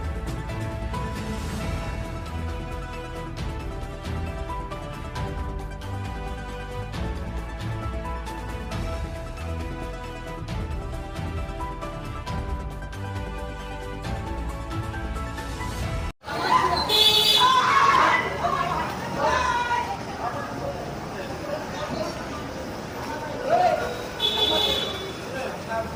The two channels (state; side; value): identical; both; correlation 1.00